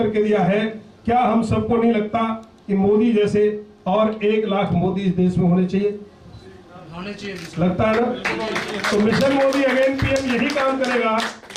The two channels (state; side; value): identical; both; correlation 1.00